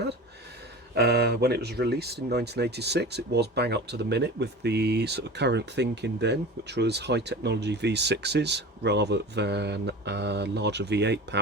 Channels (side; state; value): both; normal; correlation 0.34